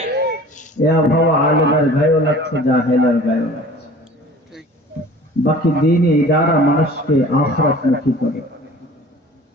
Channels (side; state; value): both; normal; correlation 0.45